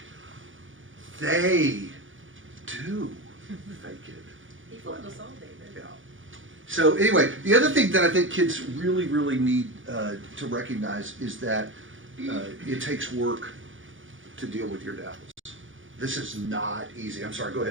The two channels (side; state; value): left; late; 0.57 ms